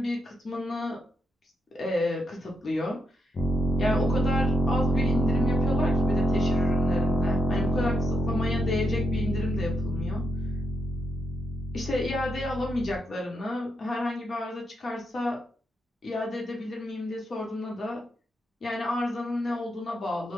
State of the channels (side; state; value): both; normal; correlation 0.80